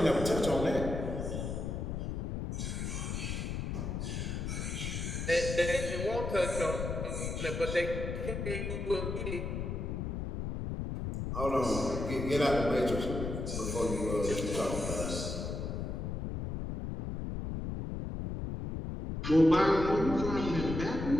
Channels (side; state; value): left; noise; rumble, 3 dB below the sound